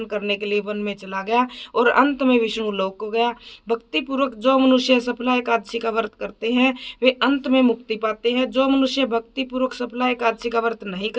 करने के लिए वन में चला गया और अंत में विष्णु लोक को गया। भक्ति पूर्वक जो मनुष्य सफला एकादशी का व्रत करते हैं वे अंत में मुक्ति पाते हैं। जो मनुष्य भक्ति पूर्वक सफला एकादशी का व्रत नहीं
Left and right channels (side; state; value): both; identical; correlation 1.00